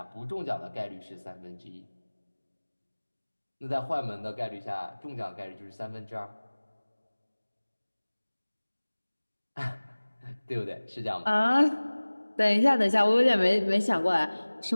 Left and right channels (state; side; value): inverted; both; correlation -1.00